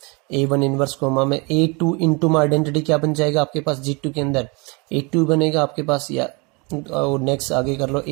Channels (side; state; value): left; quieter; 29.3 dB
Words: A1 इन्वर्स कोमा में A2 इंटू में आइडेंटिटी क्या बन जाएगा आपके पास G2 के अंदर A2 बनेगा आपके पास, या और नेक्स्ट आगे कर लो